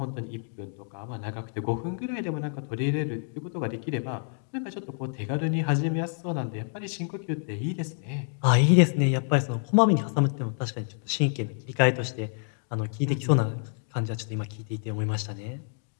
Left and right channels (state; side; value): silent; right; 59 dB below the other